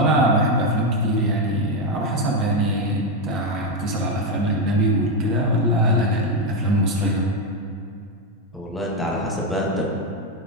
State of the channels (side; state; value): both; normal; correlation 0.07